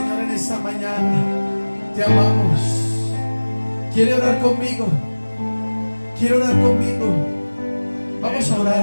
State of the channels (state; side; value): inverted; both; correlation -1.00